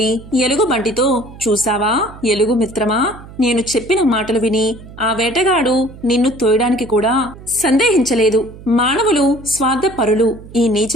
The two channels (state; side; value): noise; right; hum, 17 dB below the sound